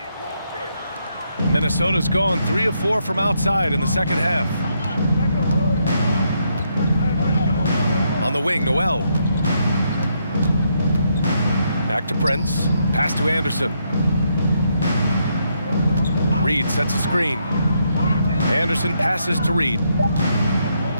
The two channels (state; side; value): inverted; both; correlation -0.77